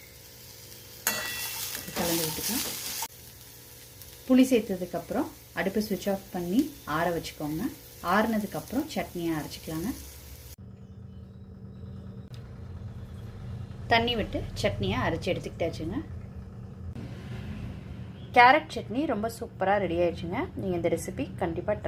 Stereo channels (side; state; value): both; identical; correlation 1.00